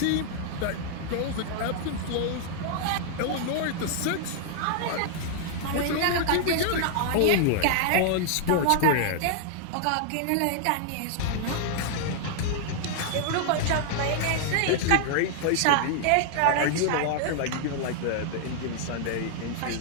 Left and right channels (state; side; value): different; both; correlation 0.00